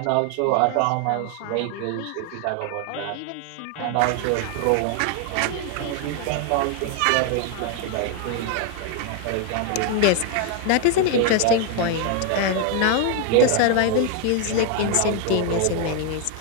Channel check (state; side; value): different; both; correlation 0.00